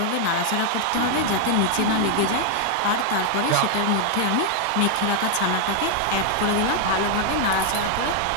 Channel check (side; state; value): both; different; correlation 0.00